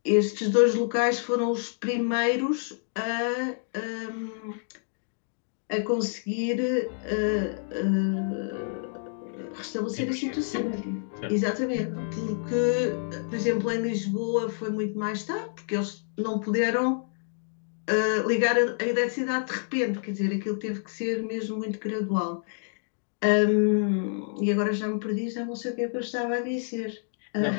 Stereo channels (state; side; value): silent; right; digital silence